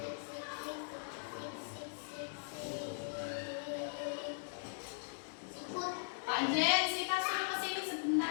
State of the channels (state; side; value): silent; right; 51 dB below the other